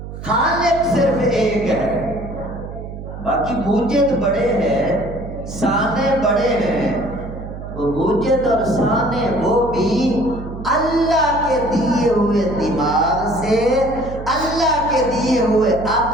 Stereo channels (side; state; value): right; noise; hum, 10 dB below the sound